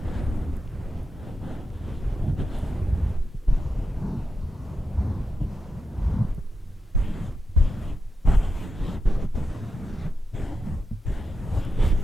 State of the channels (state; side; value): normal; both; correlation 0.87